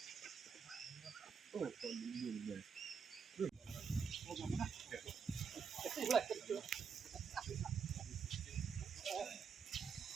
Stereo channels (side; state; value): left; quieter; 6.2 dB